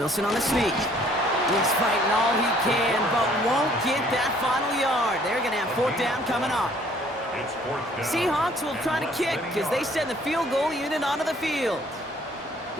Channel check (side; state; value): both; normal; correlation 0.59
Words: on the sneak. He's fighting all he can, but won't get that final yard. They're going to have fourth down coming up. It's fourth down. Seahawks will try to kick as they send the field goal unit onto the field.